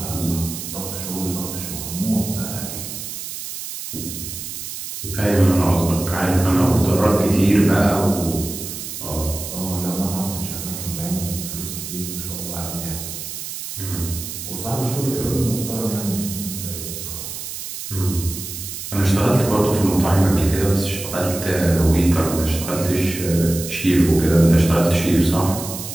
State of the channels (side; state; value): right; noise; hiss, 8 dB below the sound